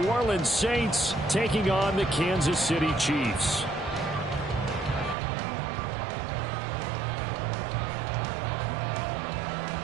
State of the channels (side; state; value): left; drops out; at 5.2 s